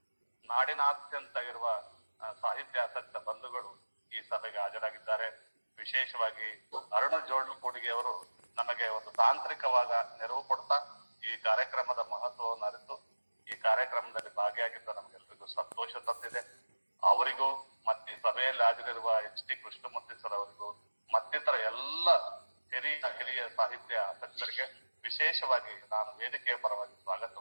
ನಾಡಿನಾದ್ಯಂತ ಇರುವ ಸಾಹಿತ್ಯಾಸಕ್ತ ಬಂಧುಗಳು ಈ ಸಭೆಗೆ ಹಾಜರಾಗಿದ್ದಾರೆ. ವಿಶೇಷವಾಗಿ ಅರುಣ ಜೋಡ್ಲುಕೂಡಿಗೆ ಅವರು ನಮಗೆ ಒಂದು ತಾಂತ್ರಿಕವಾದ ನೆರವು ಕೊಡ್ತಾ ಈ ಕಾರ್ಯಕ್ರಮದ ಮಹತ್ವವನ್ನು ಅರಿತು ಈ ಕಾರ್ಯಕ್ರಮದಲ್ಲಿ ಭಾಗಿಯಾಗಿದ್ದ ನಮಗೆಲ್ಲರಿಗೂ ಸಂತೋಷ ತಂದಿದೆ. ಅವರಿಗೂ ಮತ್ತೆ ಸಭೆಯಲ್ಲಿ ಹಾಜರಿರುವ ಎಚ್ ಟಿ ಕೃಷ್ಣಮೂರ್ತಿ ಸರ್ ಅವರಿಗೂ ಮತ್ತಿತರ ಎಲ್ಲ ಹಿರಿಯ ಸಾಹಿತ್ಯ ಆಸಕ್ತರಿಗೆ ವಿಶೇಷವಾಗಿ ನಾನು ವೇದಿಕೆಯ ಪರವಾಗಿ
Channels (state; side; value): inverted; both; correlation -1.00